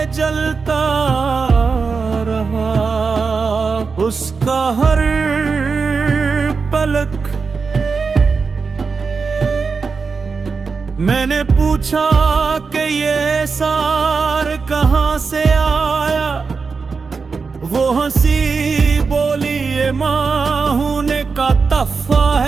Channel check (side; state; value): left; quieter; 4.9 dB